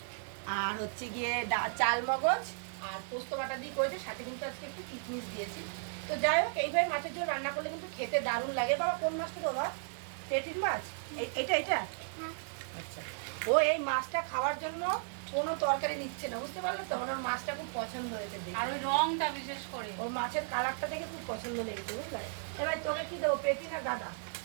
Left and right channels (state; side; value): silent; left; digital silence